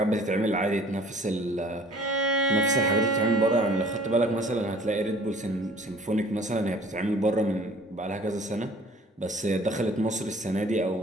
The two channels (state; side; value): normal; both; correlation 0.51